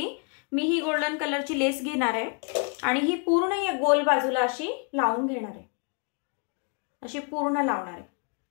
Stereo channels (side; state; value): right; quieter; 37.3 dB